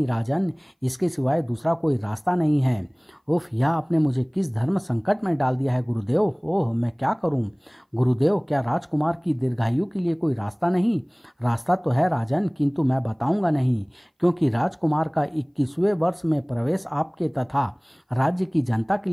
राजन, इसके सिवाय दूसरा कोई रास्ता नहीं है। उफ, यह आपने मुझे किस धर्म संकट में डाल दिया है गुरुदेव। ओह, मैं क्या करूं? गुरुदेव, क्या राजकुमार की दीर्घायु के लिए कोई रास्ता नहीं? रास्ता तो है राजन, किंतु मैं बताऊंगा नहीं, क्योंकि राजकुमार का 21वें वर्ष में प्रवेश आपके तथा राज्य की जनता के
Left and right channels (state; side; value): identical; both; correlation 1.00